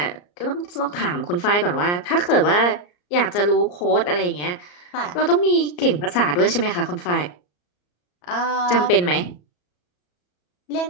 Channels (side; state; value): right; late; 34 ms